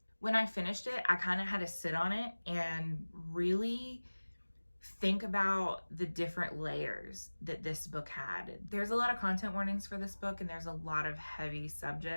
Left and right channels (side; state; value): both; inverted; correlation -1.00